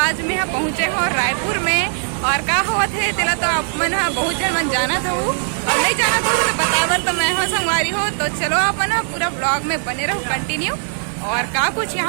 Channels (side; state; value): left; silent; 66 dB below the other